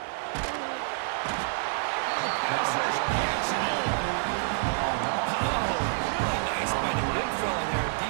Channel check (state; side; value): silent; left; digital silence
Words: Pass rush gets it. Oh, really nice by the big fella there.